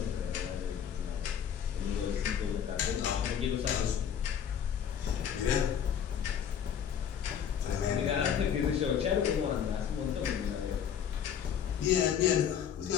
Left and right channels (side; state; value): right; quieter; 8.5 dB